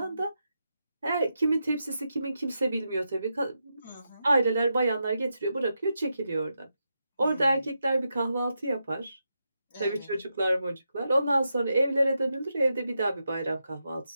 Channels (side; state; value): both; inverted; correlation -0.86